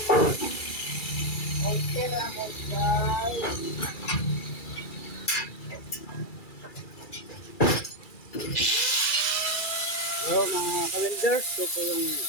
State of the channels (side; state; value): right; late; 2.3 ms